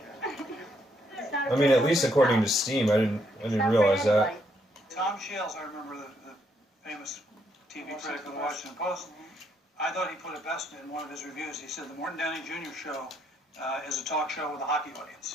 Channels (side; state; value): both; normal; correlation 0.74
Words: I mean, at least according to Steam, I didn't realize that. Tom Shales, I remember the famous TV critic of the Washington Post. I thought he put it best in one of his reviews. He said the Morton Downey Jr. Show is a talk show with a hockey